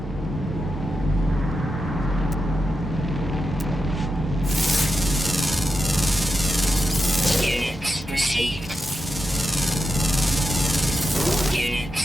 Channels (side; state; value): both; normal; correlation 0.88